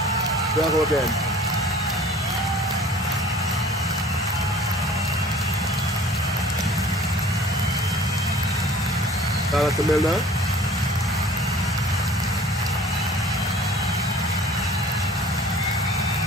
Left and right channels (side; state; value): both; normal; correlation 0.48